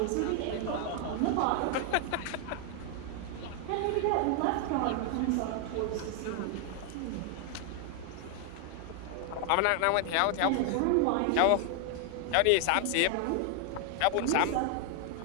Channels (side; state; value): both; different; correlation 0.00